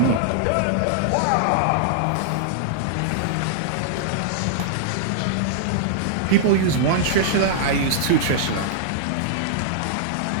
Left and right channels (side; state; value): both; different; correlation -0.01